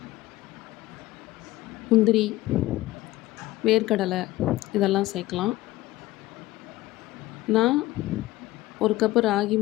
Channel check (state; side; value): quieter; right; 17.4 dB